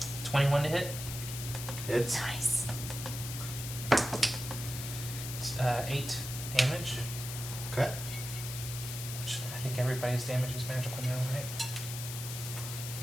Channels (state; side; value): noise; left; hiss, 7 dB below the sound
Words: 21 to hit. It's Nice. 8 damage. Okay. Which I think everybody's damage is magical now, right?